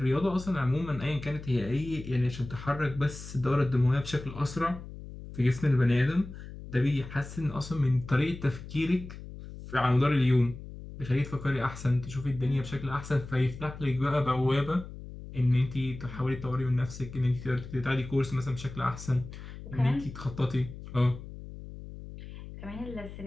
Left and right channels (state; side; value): noise; left; hum, 13 dB below the sound